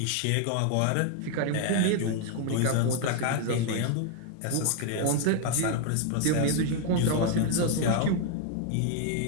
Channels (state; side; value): different; both; correlation 0.00